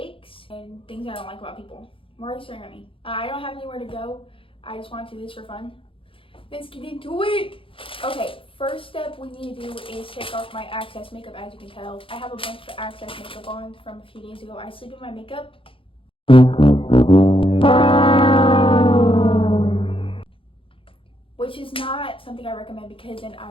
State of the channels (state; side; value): late; right; 0.26 ms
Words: and things I don't like about people. Why are you staring at me? I don't have anywhere to go. I just want to do this for fun. Let's get into it! Okay, first step we need to do is take off my Access makeup. As you can tell, I have a bunch of Access makeup on from a few days ago. I sleep in my makeup. Which is not something I recommend because then